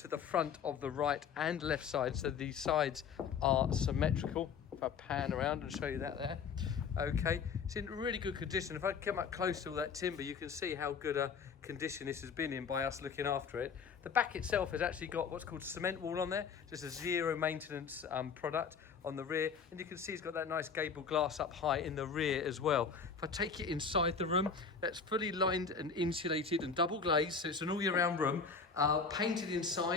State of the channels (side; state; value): right; quieter; 5.8 dB